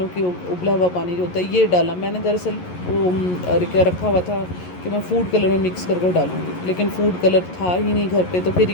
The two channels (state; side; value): late; right; 11 ms